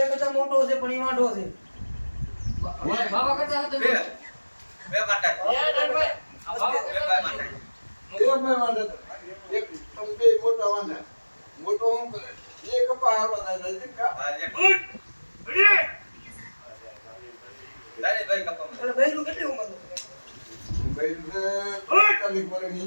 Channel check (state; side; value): inverted; both; correlation -1.00